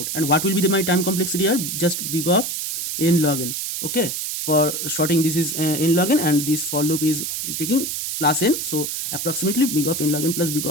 And what will be my time complexity here? Just big of n log n. Okay, for sorting this is n log n, and this for loop is taking plus n, so approximately big of n log n plus big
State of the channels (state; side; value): noise; right; hiss, 3 dB below the sound